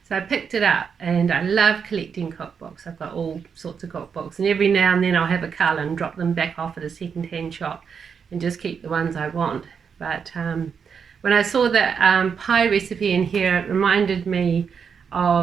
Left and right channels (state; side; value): quieter; left; 6.5 dB